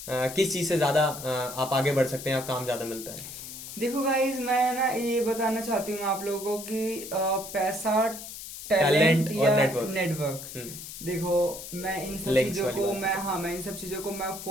किस चीज़ से ज़्यादा आप आगे बढ़ सकते हैं, आप काम ज़्यादा मिलता है। देखो गाइस, मैं ना ये बताना चाहती हूँ आप लोगों को कि पैसा, टैलेंट टैलेंट और या नेटवर्क। नेटवर्क। देखो मैं इन सब Links चीजों वाली को बात है। मैं इन सब चीजों को मैं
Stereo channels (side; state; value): left; noise; hiss, 11 dB below the sound